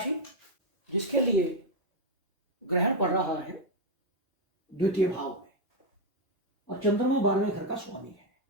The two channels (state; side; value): normal; both; correlation 0.02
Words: जिसके लिए ग्रहण पड़ रहा है द्वितीय भाव में और चंद्रमा 12वें घर का स्वामी है,